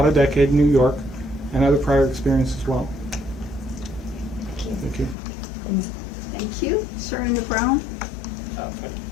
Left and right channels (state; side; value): drops out; right; at 5.2 s